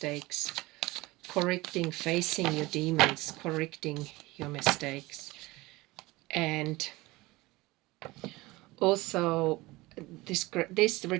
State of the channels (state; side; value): quieter; left; 20.8 dB